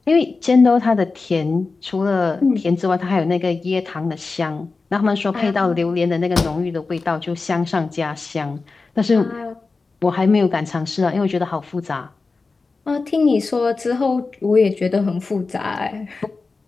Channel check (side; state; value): right; quieter; 4.0 dB